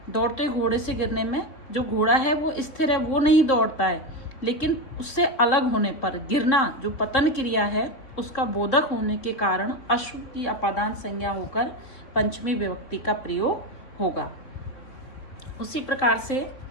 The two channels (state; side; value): late; right; 3.7 ms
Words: दौड़ते घोड़े से गिरने में, जो घोड़ा है वो स्थिर है, वो नहीं दौड़ता है, लेकिन उससे अलग होने पर गिरना जो पतन क्रिया है उसका बोधक होने के कारण अश्व की अपादान संज्ञा होकर पंचमी विभक्ति का प्रयोग होगा। उसी प्रकार से